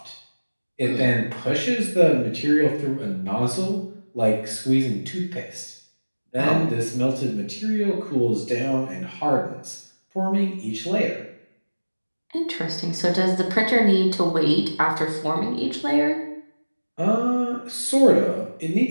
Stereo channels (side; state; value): both; inverted; correlation -1.00